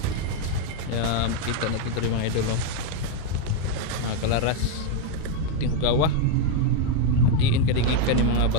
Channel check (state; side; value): different; both; correlation 0.02